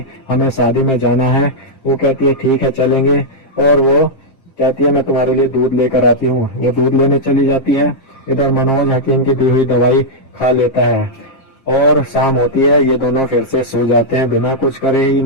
हमें शादी में जाना है। वो कहती है ठीक है चलेंगे, और वो कहती है मैं तुम्हारे लिए दूध लेकर आती हूँ। वो दूध लेने चली जाती है। इधर मनोज हकीम की दी हुई दवाई खा लेता है और शाम होती है। ये दोनों फिर से सो जाते हैं, बिना कुछ करे ही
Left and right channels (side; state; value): right; late; 7.5 ms